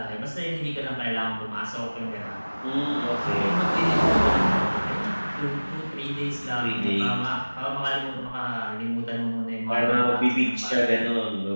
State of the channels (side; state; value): both; inverted; correlation -1.00